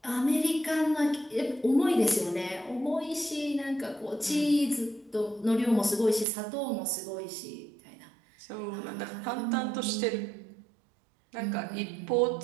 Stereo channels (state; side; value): drops out; left; at 6.2 s